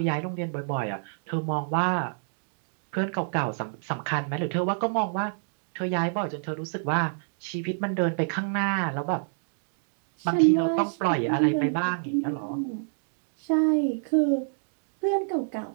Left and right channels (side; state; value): left; silent; digital silence